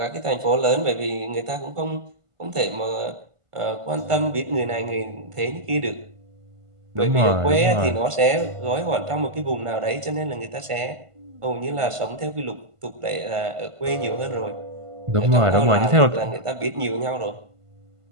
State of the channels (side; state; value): left; late; 1.5 ms